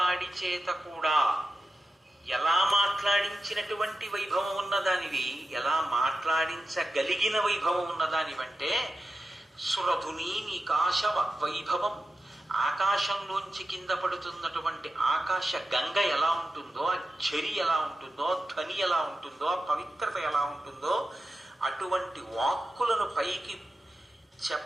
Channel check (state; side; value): normal; both; correlation 0.92